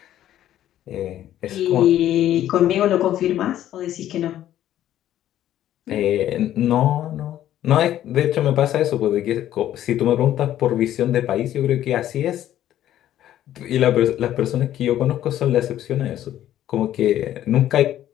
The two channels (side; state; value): right; quieter; 12.2 dB